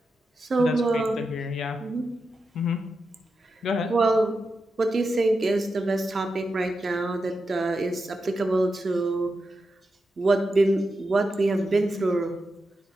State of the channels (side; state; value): both; normal; correlation 0.88